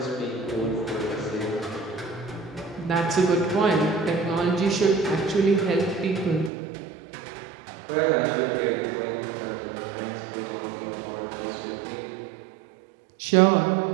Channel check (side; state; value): left; drops out; at 6.5 s